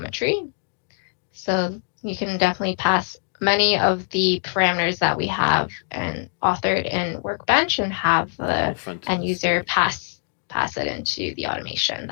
So you can definitely pass many of the parameters that we have and authored in Workbench and have the end user pass it into the automation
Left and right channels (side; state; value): right; silent; 59 dB below the other